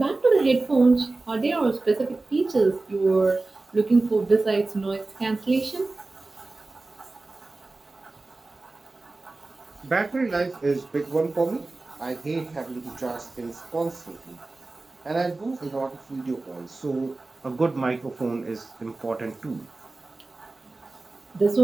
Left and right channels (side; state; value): left; quieter; 3.3 dB